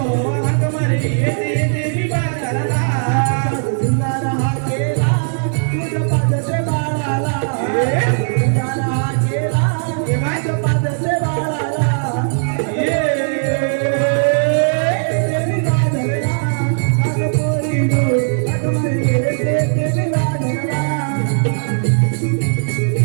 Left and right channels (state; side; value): silent; left; 68 dB below the other